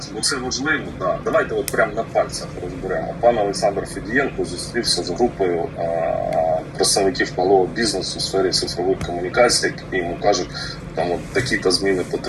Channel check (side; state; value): both; identical; correlation 1.00